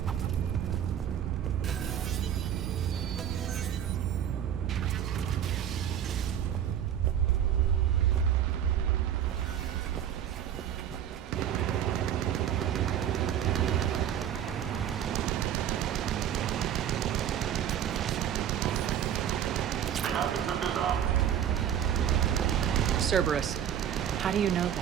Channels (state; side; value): quieter; left; 9.8 dB